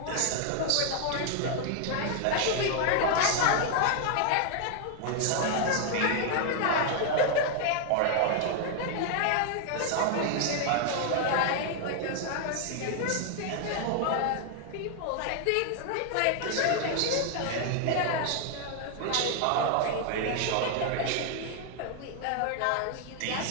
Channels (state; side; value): different; both; correlation 0.00